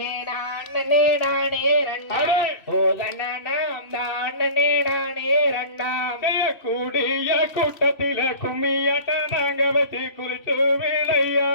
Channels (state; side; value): late; right; 3.0 ms